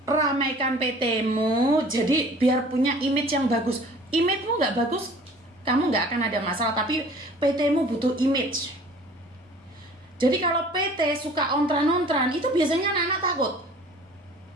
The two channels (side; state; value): both; normal; correlation 0.49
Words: ramaikan PT-mu, jadi biar punya image yang bagus. Image-mu nggak bagus, kamu nggak akan ada masalah, tapi PT-mu butuh image. Jadi kalau PT suka ontran-ontran, itu biasanya anak-anak takut.